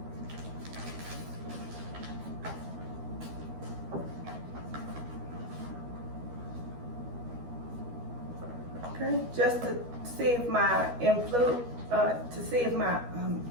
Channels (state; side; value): late; left; 12 ms